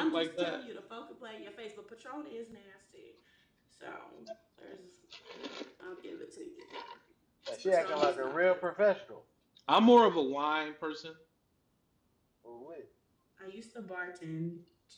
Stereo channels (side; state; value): both; identical; correlation 1.00